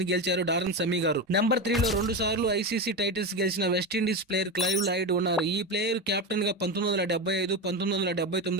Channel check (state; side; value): normal; both; correlation 0.18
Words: గెలిచారు డారెన్ సెమీ గారు. నెంబర్ 3 లో 2 సార్లు ఐసీసీ టైటిల్స్ గెలిచిన వెస్టిండీస్ ప్లేయర్ క్లైవ్ లాయిడ్ ఉన్నారు. ఈ ప్లేయర్ కెప్టెన్ గా 1975,